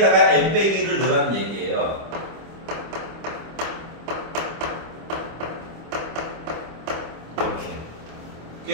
n 빼기 1을 넣으라는 얘기예요. 이렇게.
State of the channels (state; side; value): late; left; 25 ms